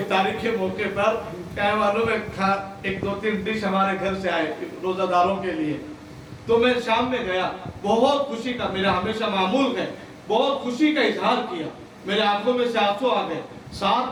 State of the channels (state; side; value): identical; both; correlation 1.00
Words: کے موقع پر کیا معلوم ہے ایک دو تین ڈش ہمارے گھر سے آئے روزہ داروں کے لیے، تو میں شام میں گیا، بہت خوشی کا، میرا ہمیشہ معمول ہے، بہت خوشی کا اظہار کیا، میرے آنکھوں میں سے آنسو آ گئے،